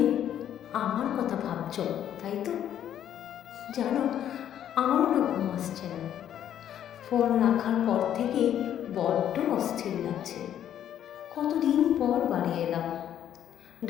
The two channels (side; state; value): right; quieter; 10.4 dB